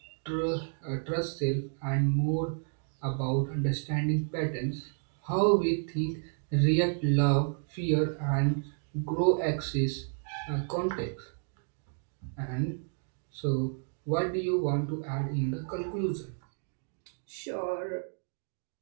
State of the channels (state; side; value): silent; left; 57 dB below the other